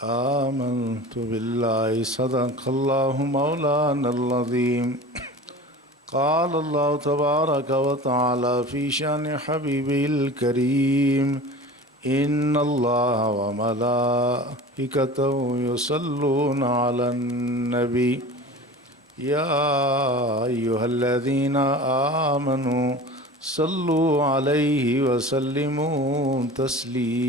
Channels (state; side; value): normal; both; correlation 0.37